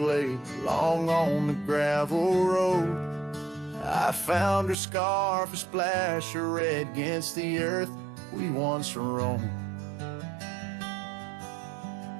long on the gravel road, I found her scarf, a splash of red against the earth we once roamed.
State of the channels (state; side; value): drops out; left; at 4.8 s